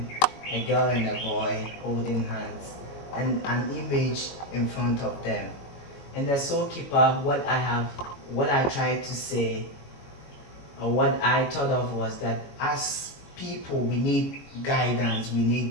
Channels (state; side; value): late; right; 21 ms